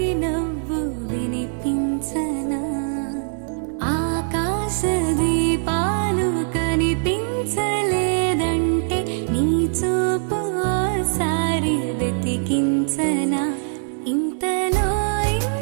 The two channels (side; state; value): left; silent; 60 dB below the other